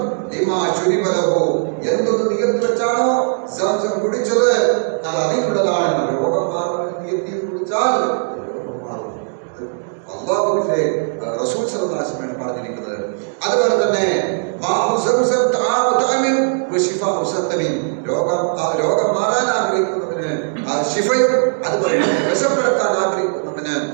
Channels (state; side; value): silent; left; digital silence